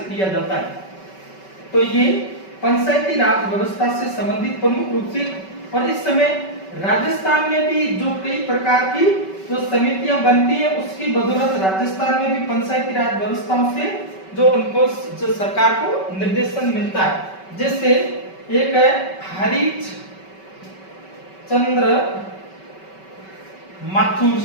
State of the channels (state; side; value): late; right; 5.2 ms